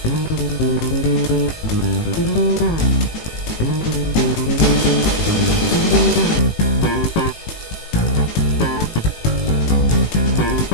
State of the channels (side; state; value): right; late; 18 ms